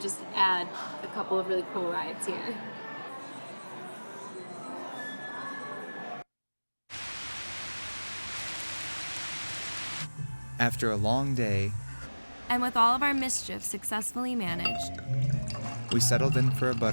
just add a couple of really cool rides here. After a long day, And with all of our mischief successfully managed, we settled in for a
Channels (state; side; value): inverted; both; correlation -1.00